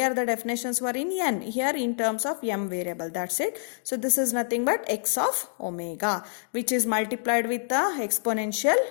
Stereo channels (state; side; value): silent; right; digital silence